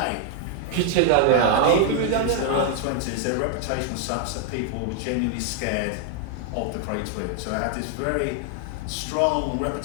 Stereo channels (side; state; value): both; different; correlation 0.00